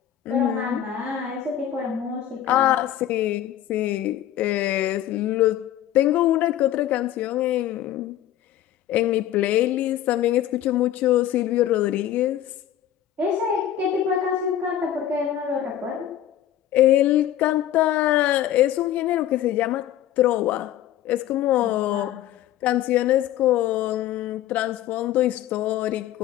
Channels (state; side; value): quieter; right; 11.7 dB